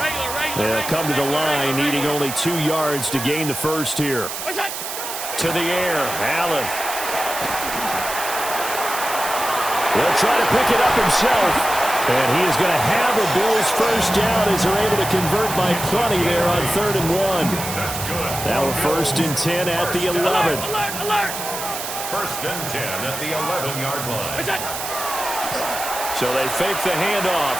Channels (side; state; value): right; noise; hiss, 6 dB below the sound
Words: They'll come to the line, needing only 2 yards to gain the first here. To the air, Allen. He'll try to pick it up himself. And he is going to have the Bills first down as they're able to convert by plenty there on 3rd and 1. Now a 1st and 10 at the 11. Alert, alert. 1st and 10 at the 11-yard line. So they fake the handoff.